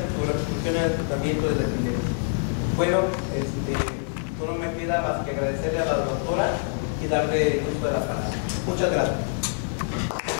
su repercusión en el tratamiento de la epilepsia. Bueno, solo me queda más que agradecerle a la doctora y darle el uso de la palabra. Muchas gracias.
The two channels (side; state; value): right; silent; digital silence